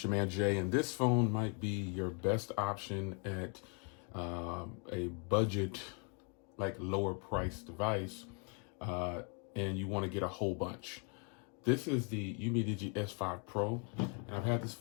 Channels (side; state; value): right; quieter; 38.0 dB